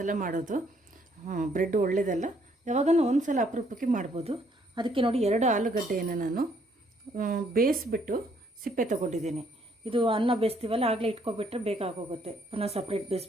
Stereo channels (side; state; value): both; normal; correlation 0.67